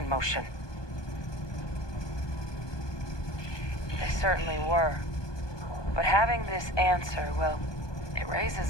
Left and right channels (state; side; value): late; right; 1.2 ms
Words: motion. They certainly were. But having this answer, well, it